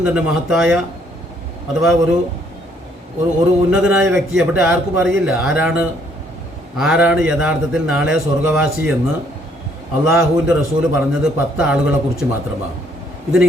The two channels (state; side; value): normal; both; correlation 0.66